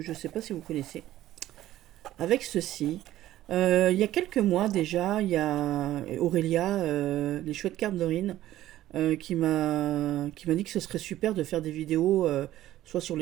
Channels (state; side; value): quieter; left; 14.0 dB